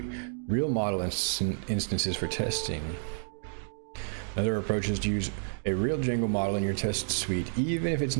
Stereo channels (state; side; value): silent; left; digital silence